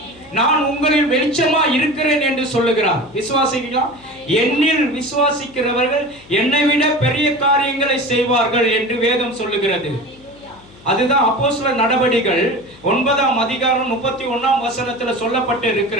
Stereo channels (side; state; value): left; noise; hum, 24 dB below the sound